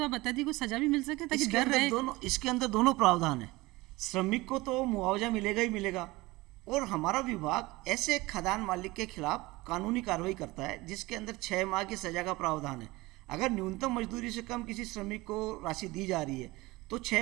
आप बता दी, कोई सजा भी मिल सके ताकि डर रहे। इसके अंदर दोनों प्रावधान है। श्रमिक को तो मुआवजा मिलेगा ही मिलेगा, और हमारा विभाग ऐसे खदान मालिक के खिलाफ कानूनी कार्रवाई करता है जिसके अंदर 6 माह की सजा का प्रावधान है। अगर न्यूनतम मजदूरी से कम किसी श्रमिक को राशि दी जा रही है तो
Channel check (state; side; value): quieter; left; 21.0 dB